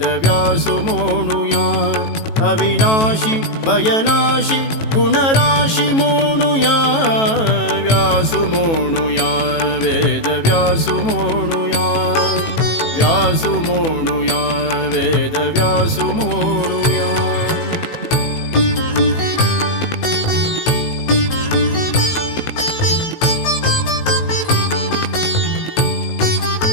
म्हणूया अविनाशी भयनाशी गुणराशी म्हणूया व्यासु म्हणूया वेदव्यासु म्हणूया व्यासु म्हणूया वेदव्यासु म्हणूया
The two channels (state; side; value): late; right; 18 ms